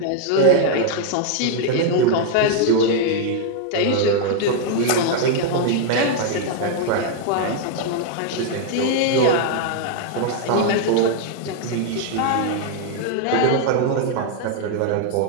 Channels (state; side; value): different; both; correlation 0.00